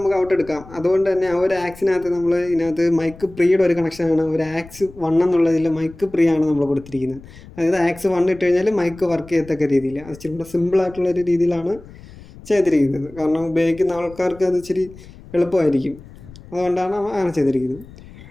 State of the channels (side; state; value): left; noise; rumble, 19 dB below the sound